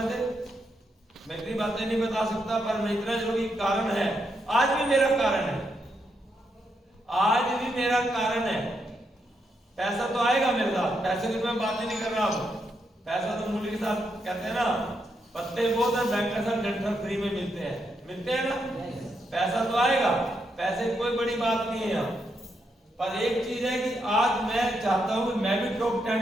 थे, मैं इतनी बातें नहीं बता सकता, पर मैं इतना जरूर कारण है, आज भी मेरा कारण है, आज भी मेरा कारण है। पैसा तो आएगा मेरे साथ, पैसे की मैं बात ही नहीं कर रहा हूं, पैसा तो मूल्य के साथ कहते हैं ना, पत्ते बहुत है, बैंक के साथ डंठल फ्री में मिलते हैं ना, पैसा तो आएगा, पैसे की कोई बड़ी बात नहीं है यहाँ। पर एक चीज है कि आज मैं चाहता हूं कि मैं भी टॉप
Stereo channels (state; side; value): normal; both; correlation 0.81